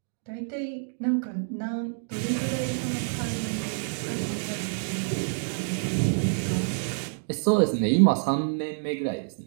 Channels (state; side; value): silent; left; digital silence